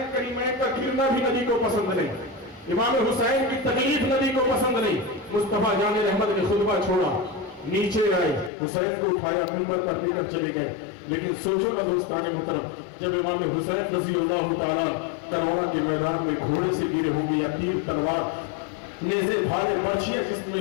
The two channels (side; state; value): right; drops out; at 8.5 s